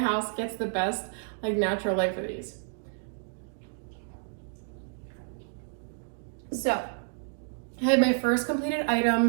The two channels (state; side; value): silent; left; digital silence